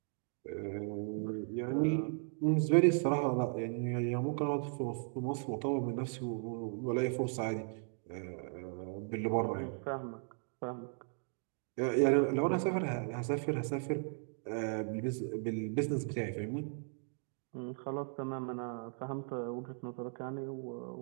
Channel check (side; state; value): left; silent; 53 dB below the other